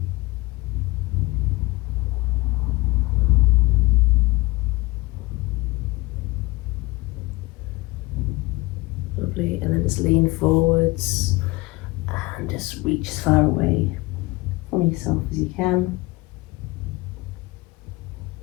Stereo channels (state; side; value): quieter; right; 22.2 dB